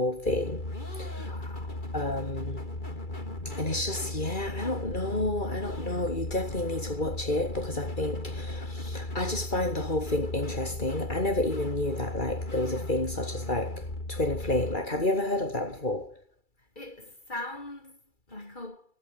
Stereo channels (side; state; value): right; late; 2.3 ms